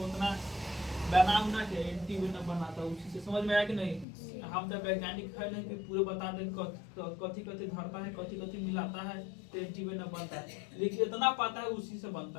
उतना बना उना के एंटीवेनम बनाता है उसी से। समझ में आया कि नहीं? हम तो वैज्ञानिक है नहीं कि पूरे बता दें कथी कथी धरता है, कथी कथी मिलाता है तो एंटीवेनम बनता है, लेकिन इतना पता है उसी से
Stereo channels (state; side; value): drops out; right; at 4.0 s